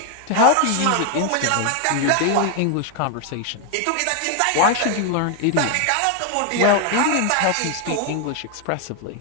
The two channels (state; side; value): different; both; correlation 0.01